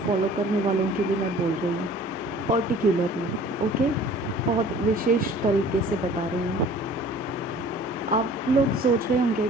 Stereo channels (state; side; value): normal; both; correlation 0.49